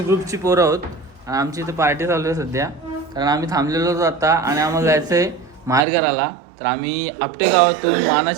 ग्रुपची पोरं आहोत आणि आमची इथे पार्टी चालू आहे सध्या. कारण आम्ही थांबलेलो होतो आता आणि आम्हाला जायचं आहे माहेर घराला. तर आम्ही आपटे गावातून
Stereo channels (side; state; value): left; drops out; at 5.8 s